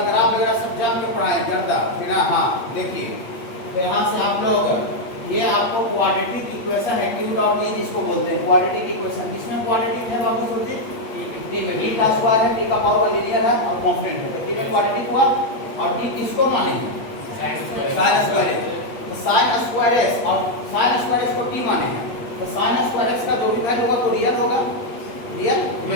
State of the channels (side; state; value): right; late; 8.5 ms